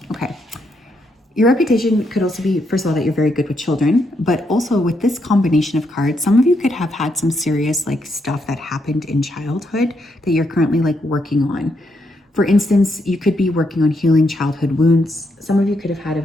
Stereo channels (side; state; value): both; normal; correlation 0.78